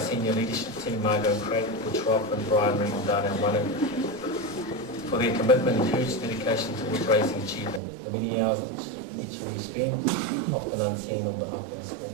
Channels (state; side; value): drops out; left; at 7.8 s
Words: leadership team, Margot Craig, Butch Roth and Brian Reed and Dana Wanu, for their commitment and huge dedication towards raising achievement. The many hours each of you spend, often unseen on behalf of our school.